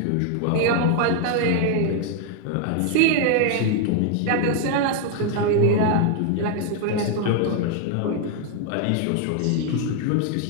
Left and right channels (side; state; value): both; different; correlation 0.00